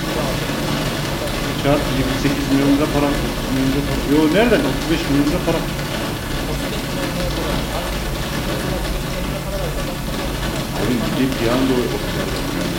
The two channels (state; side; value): identical; both; correlation 1.00